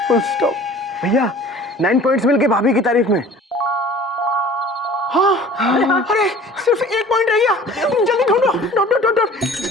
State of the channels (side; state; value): both; normal; correlation 0.46